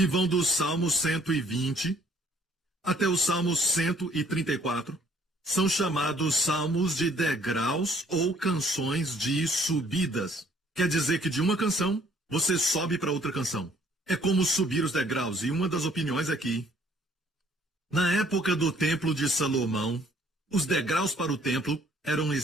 vão do Salmo 120 até o Salmo 134 são chamados salmos de degraus ou canções de subidas. Quer dizer que de uma canção, você sobe para outra canção. É como subir os degraus. E uma das opiniões aqui, na época do Templo de Salomão, os degraus para o templo eram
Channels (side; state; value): both; normal; correlation 0.61